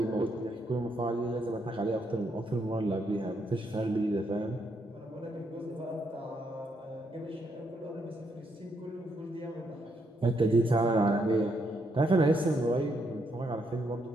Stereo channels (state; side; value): normal; both; correlation 0.76